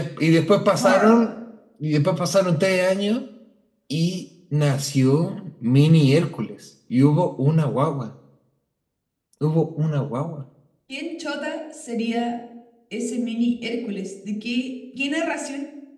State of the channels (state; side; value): identical; both; correlation 1.00